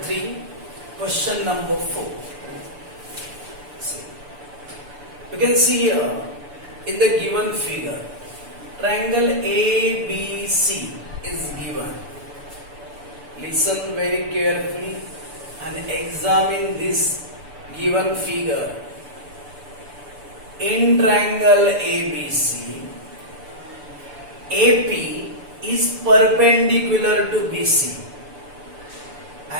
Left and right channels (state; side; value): late; left; 6.9 ms